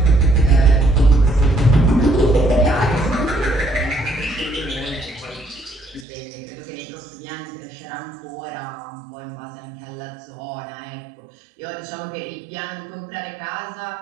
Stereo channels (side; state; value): left; drops out; at 6.1 s